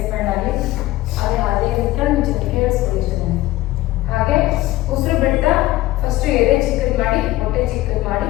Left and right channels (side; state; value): right; quieter; 16.8 dB